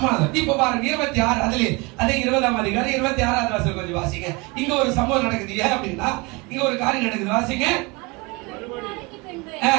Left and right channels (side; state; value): left; quieter; 26.7 dB